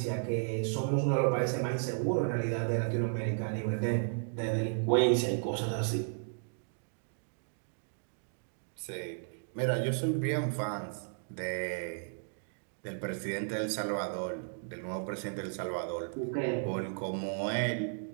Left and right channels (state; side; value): silent; left; digital silence